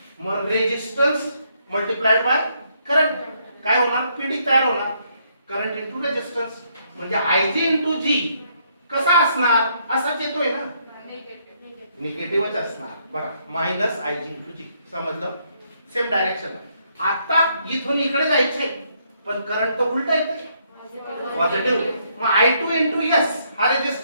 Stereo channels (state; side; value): inverted; both; correlation -0.72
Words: मग रेजिस्टन्स मल्टिप्लाइड बाय करंट काय होणार? PD तयार होणार. करंट इंटू रेजिस्टन्स म्हणजे IG इंटू G कसा असणार? असाच येतोय ना, निगेटिव्हच असणार. बघा मायनस IG इंटू G. समजलं? Same direction. आता इथून इकडे जायचंय पण करंट तर उलटा येतोय, पॉझिटिव्ह. मग I2 इंटू S. हा